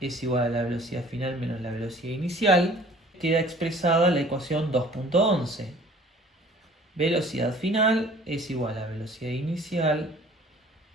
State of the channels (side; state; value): both; normal; correlation 0.51